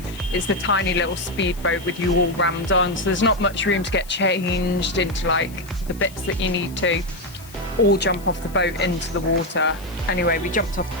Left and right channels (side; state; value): left; noise; hiss, 21 dB below the sound